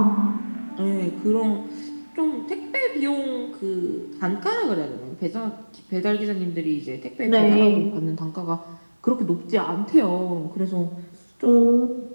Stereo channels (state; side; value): inverted; both; correlation -1.00